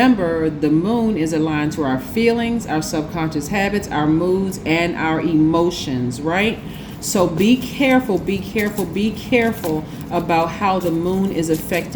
the moon is aligned to our feelings, our subconscious habits, our moods, and our emotions, right? So be careful about how the moon is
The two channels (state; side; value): identical; both; correlation 1.00